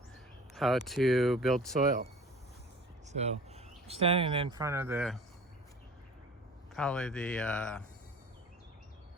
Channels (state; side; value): normal; both; correlation 0.44